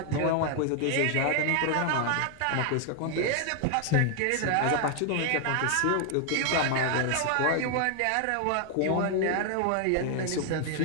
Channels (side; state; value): both; different; correlation 0.00